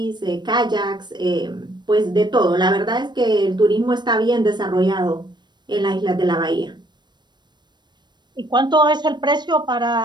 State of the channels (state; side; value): late; left; 0.21 ms